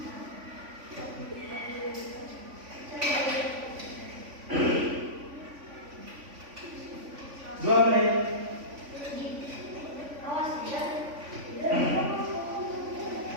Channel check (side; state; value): left; late; 3.5 ms